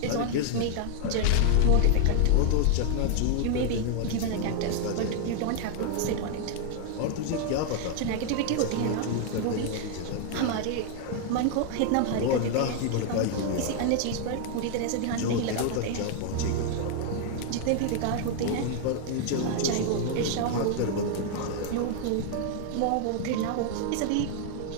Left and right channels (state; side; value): different; both; correlation 0.00